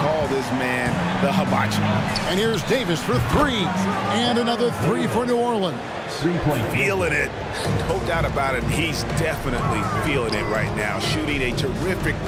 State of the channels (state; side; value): identical; both; correlation 1.00